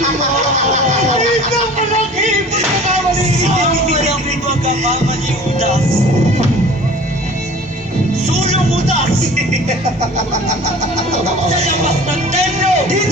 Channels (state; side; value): normal; both; correlation 0.44